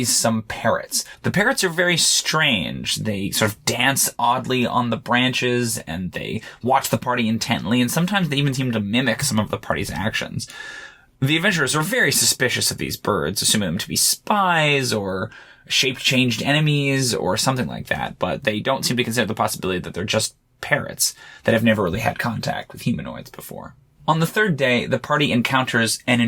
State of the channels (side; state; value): both; identical; correlation 1.00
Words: parrots. The parrots are very strange. They sort of dance oddly on the branches, and they watch the party intently, and sometimes they even seem to mimic some of the party's actions. The adventurers are very suspicious of these birds, assuming them to be spies or shape-changed enemies or something like that, but they don't seem to consider the possibility that they're just parrots that have never really had contact with humanoids before. On the third day, the party encounters an